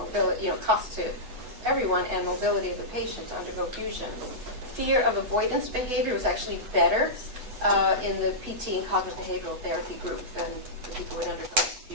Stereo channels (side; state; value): left; late; 8.1 ms